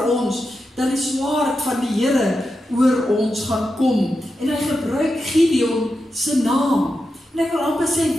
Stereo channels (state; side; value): normal; both; correlation 0.89